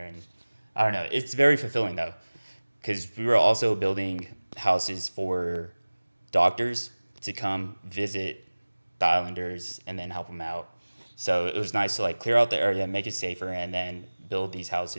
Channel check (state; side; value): inverted; both; correlation -1.00